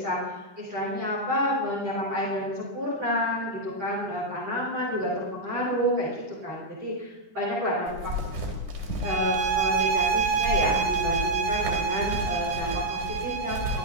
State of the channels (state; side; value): late; left; 9.9 ms